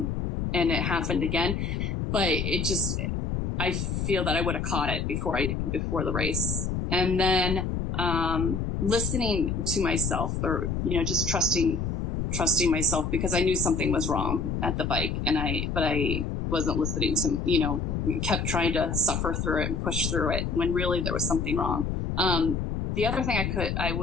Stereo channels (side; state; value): left; noise; rumble, 1 dB below the sound